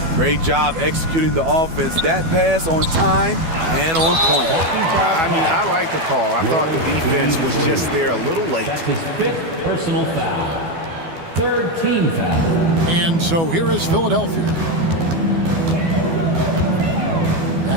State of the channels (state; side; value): late; left; 12 ms